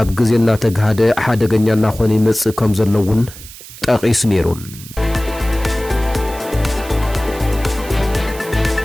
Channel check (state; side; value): noise; right; hiss, 16 dB below the sound